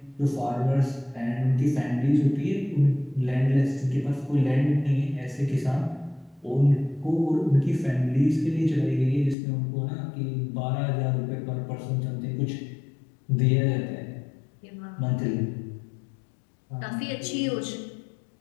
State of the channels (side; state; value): right; drops out; at 9.3 s